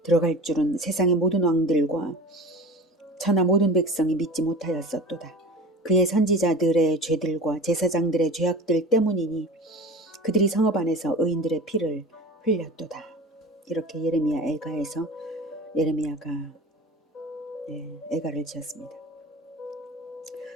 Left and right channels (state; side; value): normal; both; correlation 0.35